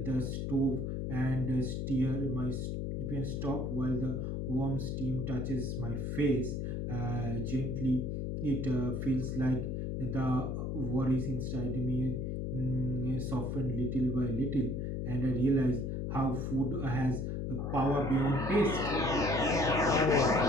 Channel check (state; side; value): noise; left; hum, 2 dB below the sound